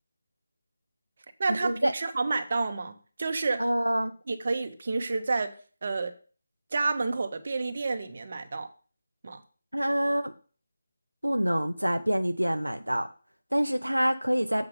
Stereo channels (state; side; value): inverted; both; correlation -0.97